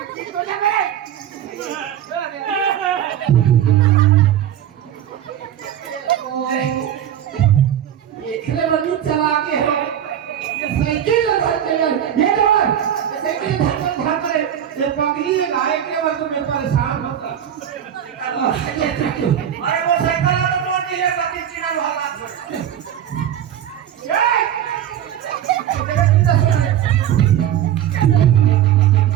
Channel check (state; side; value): quieter; left; 10.3 dB